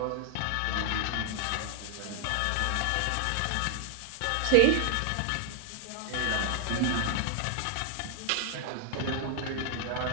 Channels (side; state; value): both; different; correlation 0.00